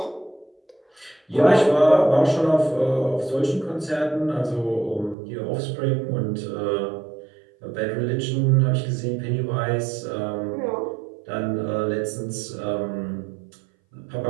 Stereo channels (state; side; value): drops out; left; at 5.2 s